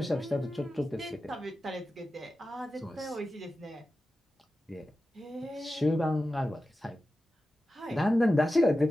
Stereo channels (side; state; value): both; normal; correlation 0.93